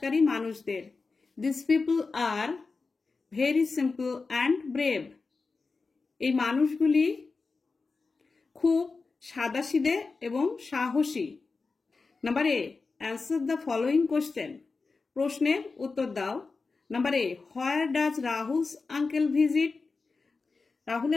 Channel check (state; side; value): quieter; right; 4.2 dB